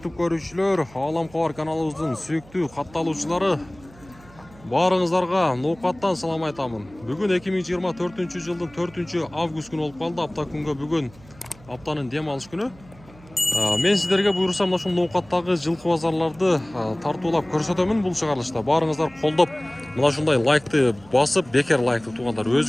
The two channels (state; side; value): noise; right; hum, 24 dB below the sound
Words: көрушілер, Ғаламқор каналымыздың сүйікті қатталушылары, барыңыздарға ноқаттан салам айтамын. Бүгін 2024 жылдың 4 август күні болып қалды. Апта күнгі бүгін аптаның демалыс күні. Мен сіздерге бұйырсам мына ноқаттағы жылқы базарларды тартулап көрсетемін бұл шығарылышта. Барыңыздар қолдап, мына шындай лайкты басып, бекер лайкты туғандар.